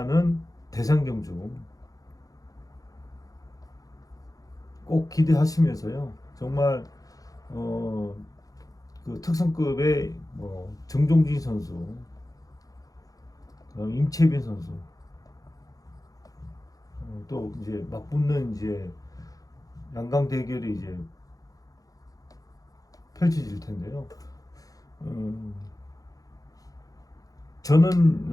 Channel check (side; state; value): right; late; 0.17 ms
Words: 대상 경주 꼭 기대하시면서요. 정말 그 특성급의 정종진 선수, 그다음 임채빈 선수, 또 이제 맞붙는 이제 양강 대결이 이제 펼쳐질 텐데요.